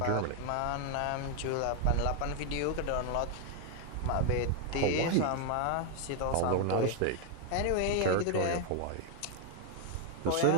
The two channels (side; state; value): both; different; correlation 0.01